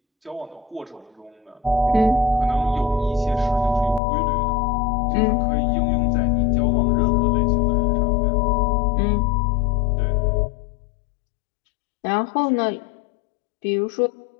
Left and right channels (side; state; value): right; drops out; at 4.0 s